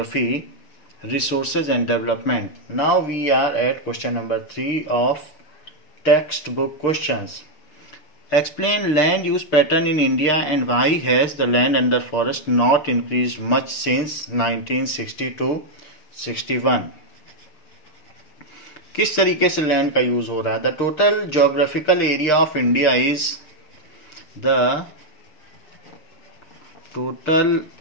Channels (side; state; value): right; late; 6.6 ms